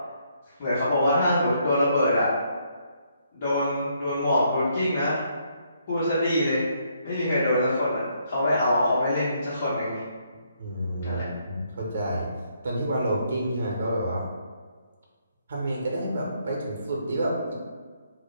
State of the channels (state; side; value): inverted; both; correlation -0.72